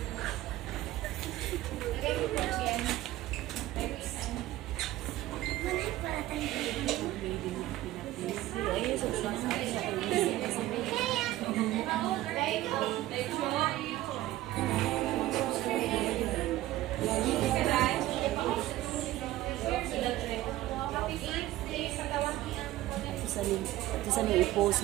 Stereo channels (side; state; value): left; quieter; 15.7 dB